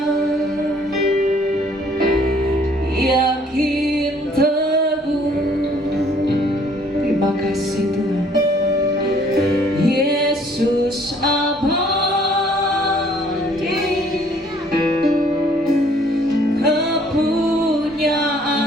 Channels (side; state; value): both; normal; correlation 0.60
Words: yakin teguh. Terima kasih Tuhan. Yesus abadi,